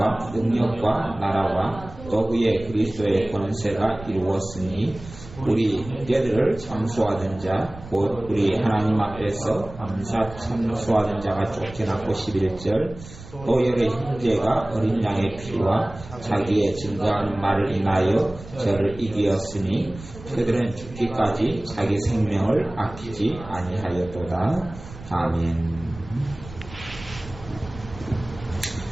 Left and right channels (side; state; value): right; noise; rumble, 16 dB below the sound